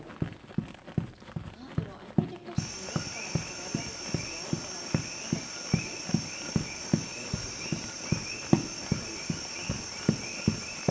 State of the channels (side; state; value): both; identical; correlation 1.00